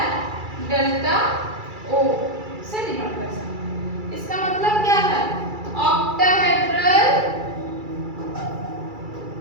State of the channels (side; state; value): left; late; 2.3 ms